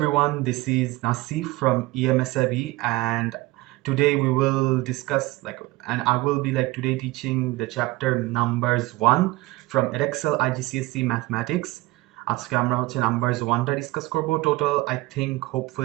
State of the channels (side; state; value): left; quieter; 20.0 dB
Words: This is Nasseef from EMSAB, and today we will discuss and I will be today teaching the chapter numbers 1 from Edexcel IGCSE Mathematics. আজকে আমরা হচ্ছে numbers 1টা discuss করব. Total, I think